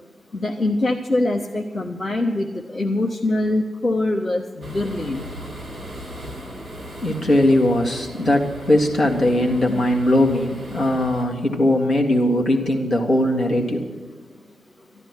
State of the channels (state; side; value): normal; both; correlation 0.85